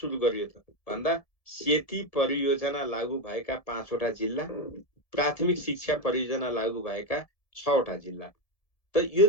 गरियो त भन्दा सेती परियोजना लागू भएका 5वटा जिल्ला, प्राथमिक शिक्षा परियोजना लागू भएका 6वटा जिल्ला। त यो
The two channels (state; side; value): late; right; 1.7 ms